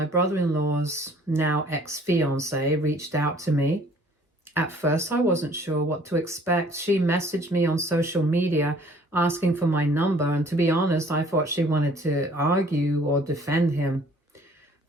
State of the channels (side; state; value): both; normal; correlation 0.56